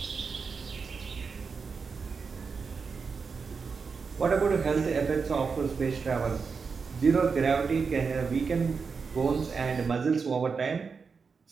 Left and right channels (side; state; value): left; quieter; 5.2 dB